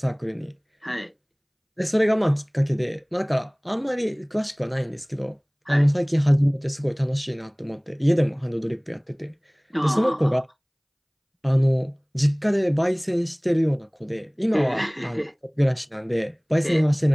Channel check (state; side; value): identical; both; correlation 1.00